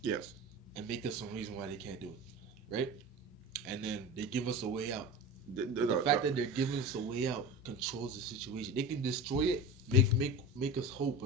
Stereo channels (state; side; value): normal; both; correlation 0.30